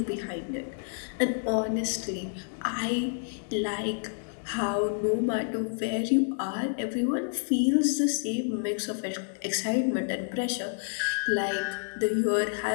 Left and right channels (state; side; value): silent; right; digital silence